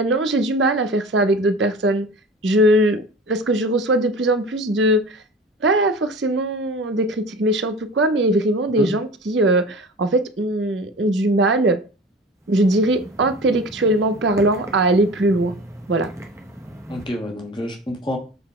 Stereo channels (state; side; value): normal; both; correlation 0.36